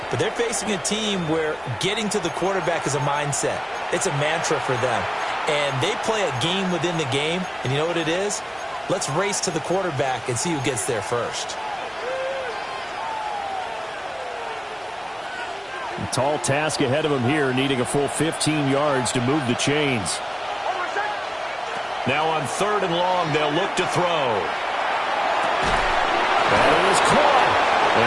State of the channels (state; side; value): identical; both; correlation 1.00